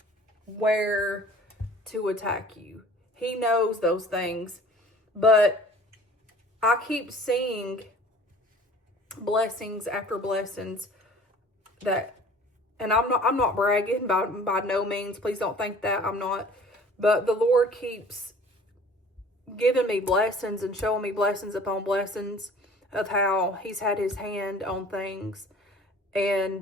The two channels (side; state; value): both; normal; correlation 0.48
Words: where to attack you. He knows those things. But I keep seeing blessings after blessings that, and I'm not bragging by no means. Please don't think that I'm not. But the Lord keeps giving me blessings and showing me blessings upon blessings of how he's had his hand on things, and